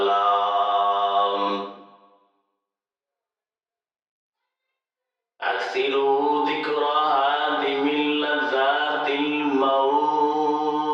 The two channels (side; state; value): both; identical; correlation 1.00